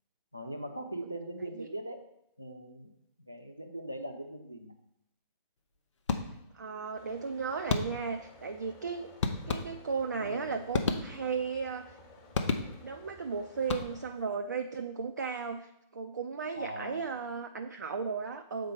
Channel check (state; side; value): inverted; both; correlation -0.55